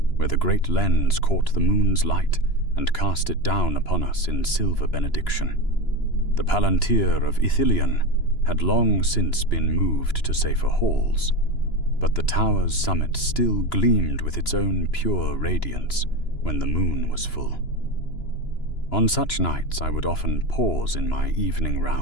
where the great lens caught the moon's light and cast it down upon us in silver benediction. The Palantir of Ithilien had long since been moved to safer halls, but the tower's summit still gleamed with its own pure radiance when the moon was full. On such nights I would often pause in my evening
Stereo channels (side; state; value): right; late; 2.9 ms